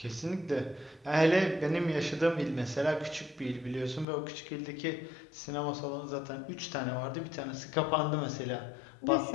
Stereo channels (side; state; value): right; drops out; at 4.0 s